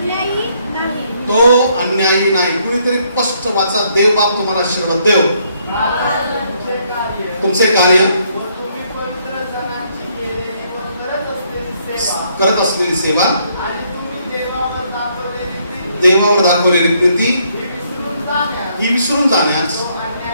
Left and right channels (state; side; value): inverted; both; correlation -0.70